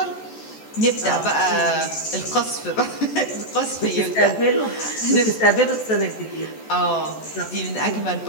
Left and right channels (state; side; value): late; right; 14 ms